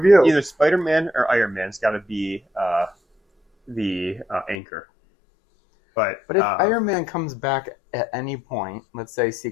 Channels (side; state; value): right; drops out; at 4.5 s